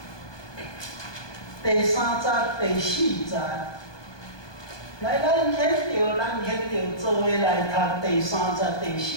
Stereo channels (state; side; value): late; right; 1.2 ms